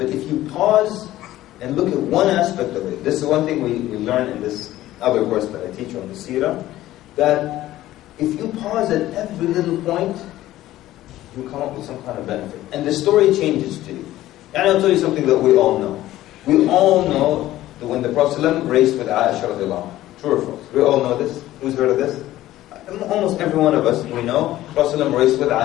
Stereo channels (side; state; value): right; quieter; 14.9 dB